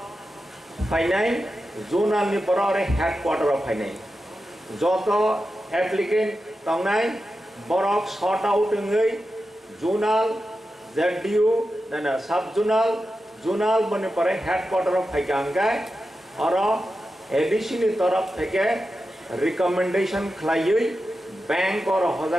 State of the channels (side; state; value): both; normal; correlation 0.91